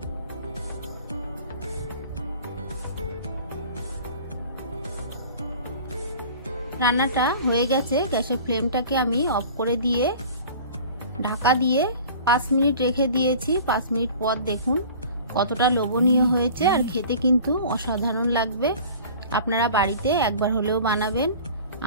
রান্নাটা হয়ে গেছে। গ্যাসের ফ্লেমটাকে আমি অফ করে দিয়ে ঢাকা দিয়ে 5 মিনিট রেখে দিয়েছি। 5 মিনিট পর দেখুন কতটা লোভনীয় হয়েছে আর খেতে কিন্তু অসাধারণ লাগবে। আপনারা বাড়িতে একবার হলেও বানাবেন।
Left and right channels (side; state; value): both; inverted; correlation -0.43